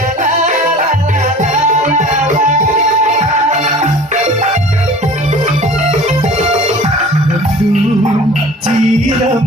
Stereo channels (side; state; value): both; normal; correlation 0.44